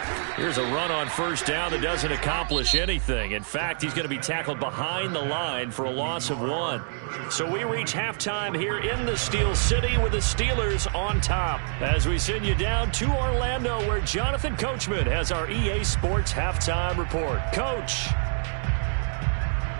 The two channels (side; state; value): left; silent; digital silence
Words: Here's a run on first down that doesn't accomplish anything. In fact, he's going to be tackled behind the line for a loss of 1. So we reach halftime here in the Steel City with the Steelers on top. As we send you down to Orlando, where Jonathan Coachman has our EA Sports halftime report. Coach.